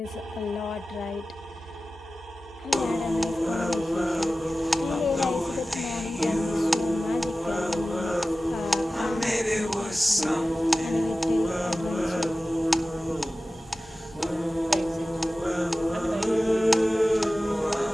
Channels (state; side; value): normal; both; correlation 0.96